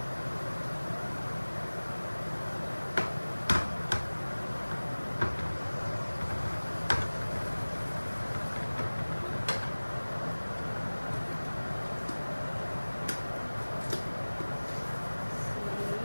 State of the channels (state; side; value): inverted; both; correlation -1.00